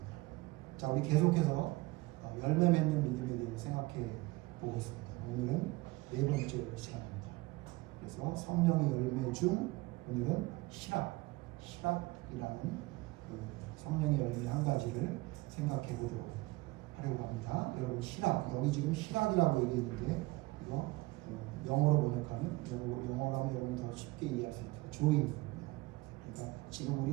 자, 우리 계속해서 열매 맺는 믿음에 대해 생각해 보고 있습니다. 오늘은 네 번째 시간입니다. 그래서 성령의 열매 중 오늘은 희락이라는 그 성령의 열매 한 가지를 생각해 보도록 하려고 합니다. 여러분 희락, 여기 지금 희락이라고 얘기했는데 이거 영어로 번역하면 영어로 하면 여러분 더 쉽게 이해할 수 있죠. joy. 그러니까 지금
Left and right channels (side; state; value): left; quieter; 21.7 dB